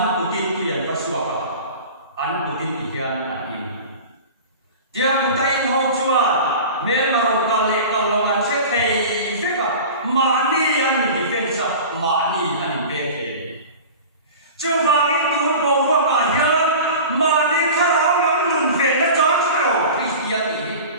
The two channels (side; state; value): both; inverted; correlation -0.36